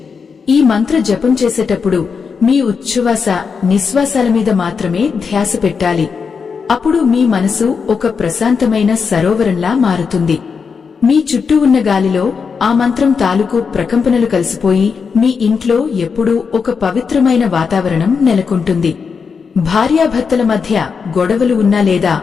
ఈ మంత్ర జపం చేసేటప్పుడు మీ ఉచ్ఛ్వాస నిశ్వాసాల మీద మాత్రమే ధ్యాస పెట్టాలి. అప్పుడు మీ మనసు ఒక ప్రశాంతమైన సరోవరంలా మారుతుంది. మీ చుట్టూ ఉన్న గాలిలో ఆ మంత్రం తాలూకు ప్రకంపనలు కలిసిపోయి మీ ఇంట్లో ఎప్పుడూ ఒక పవిత్రమైన వాతావరణం నెలకొంటుంది. భార్యాభర్తల మధ్య గొడవలు ఉన్నా లేదా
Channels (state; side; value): quieter; right; 5.7 dB